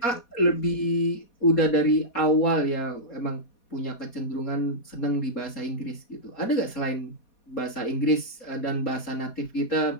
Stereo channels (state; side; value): late; right; 4.2 ms